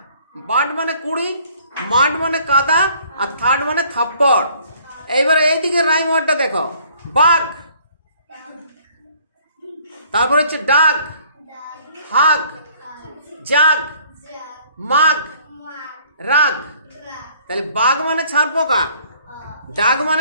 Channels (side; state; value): both; inverted; correlation -0.59